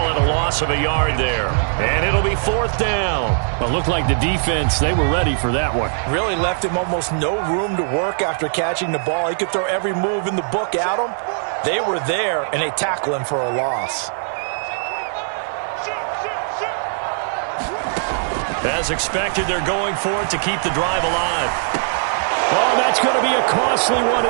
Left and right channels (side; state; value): left; silent; 66 dB below the other